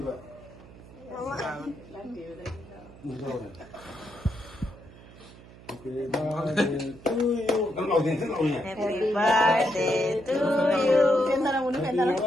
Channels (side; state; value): right; noise; hum, 20 dB below the sound